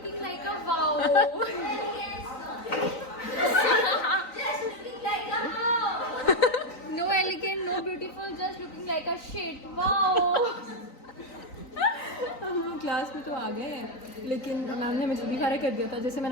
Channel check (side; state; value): right; late; 3.9 ms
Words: like a wow. Just looking like a wow. No elegant, no beautiful, just looking like a shit. Wow. हम क्लास में तो आ गए हैं, लेकिन मैम ने हमें जल्दी फारिग कर दिया था। जैसे